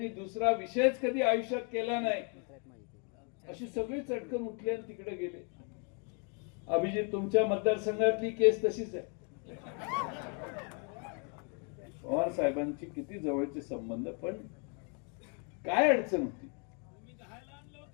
दुसरा विषयच कधी आयुष्यात केला नाही, अशी सगळी चटकन उठली आणि तिकडे गेले. अभिजित, तुमच्या मतदारसंघातली केस तशीच आहे. पवार साहेबांची किती जवळचे संबंध, पण काय अडचण होती?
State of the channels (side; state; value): right; quieter; 37.7 dB